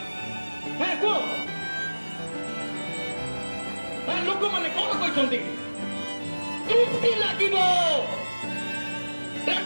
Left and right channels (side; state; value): both; inverted; correlation -1.00